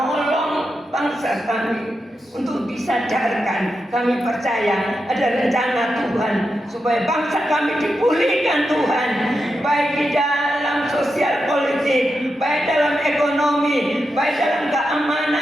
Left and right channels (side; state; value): both; normal; correlation 0.87